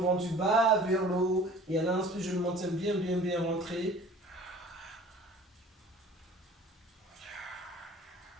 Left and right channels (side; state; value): both; normal; correlation 0.47